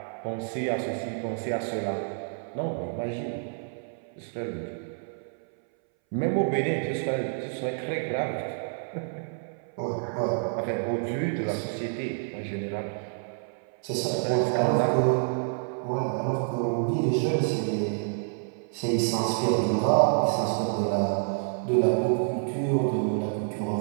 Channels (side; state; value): left; silent; 59 dB below the other